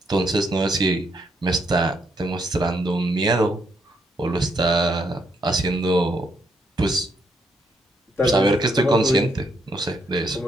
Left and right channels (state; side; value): normal; both; correlation 0.75